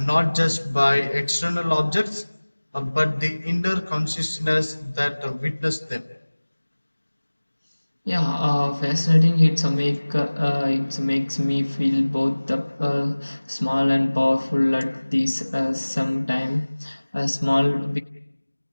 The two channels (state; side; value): inverted; both; correlation -1.00